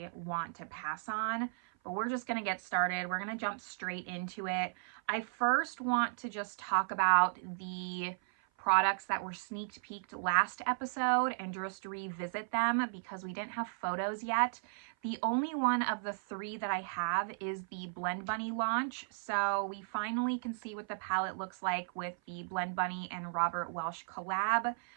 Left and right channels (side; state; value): left; silent; 54 dB below the other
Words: want to pass on, but we're just gonna get started. We're gonna jump straight into it. I first want to just talk about the products that were sneak peeked last episode and just revisit them because we didn't have photos yet. The only one of the three that I have is the Blend Bunny launch. So we finally can see what the palette looks like with the Blend Bunny and Robert Welsh collab.